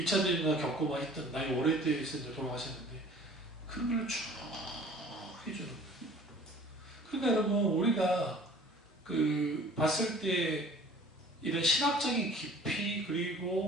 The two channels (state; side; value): normal; both; correlation 0.49